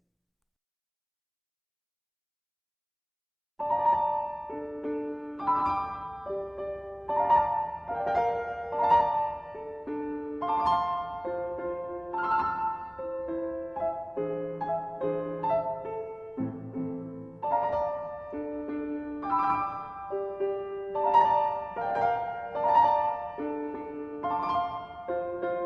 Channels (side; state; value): both; identical; correlation 1.00